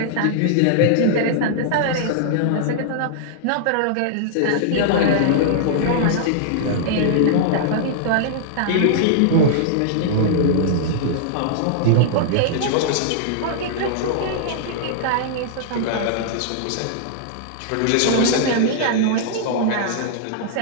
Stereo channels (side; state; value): both; different; correlation -0.01